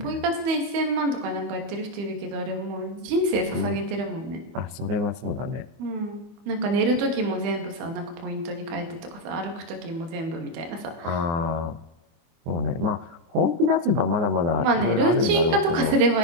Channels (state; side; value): late; left; 25 ms